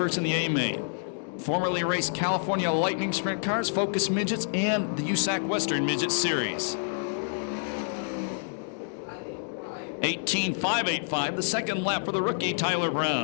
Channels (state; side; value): silent; right; digital silence